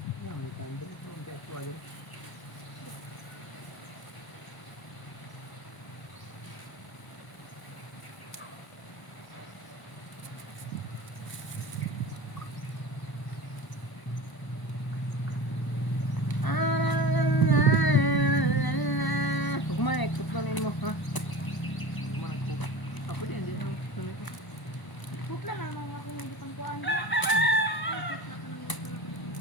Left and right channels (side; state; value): right; late; 1.0 ms